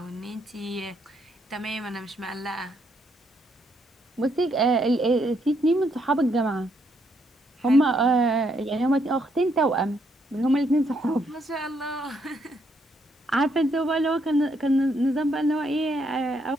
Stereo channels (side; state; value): both; normal; correlation 0.74